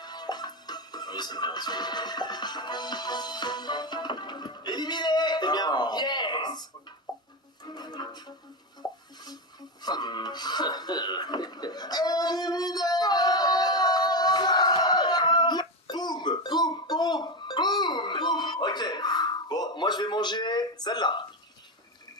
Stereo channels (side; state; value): both; normal; correlation 0.14